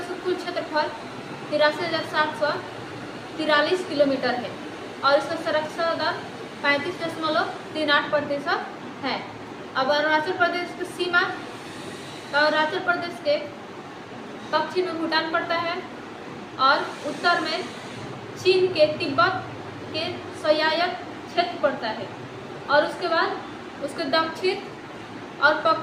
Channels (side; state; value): both; identical; correlation 1.00